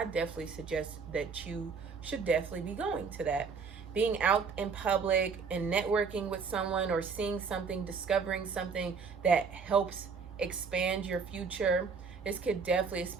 definitely suggest that you should definitely be going to that. Being out in public and networking with someone, or seeing something, discovering something that helps expand your future. This could definitely,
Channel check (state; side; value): quieter; left; 5.4 dB